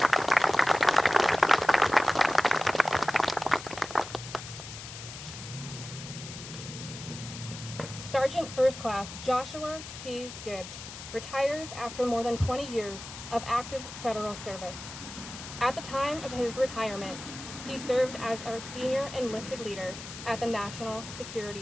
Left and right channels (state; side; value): noise; left; hiss, 12 dB below the sound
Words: Sergeant First Class Joshua P. Gibbs retires after more than 20 years of active federal service. At the time of his retirement, he served as our senior enlisted leader at the National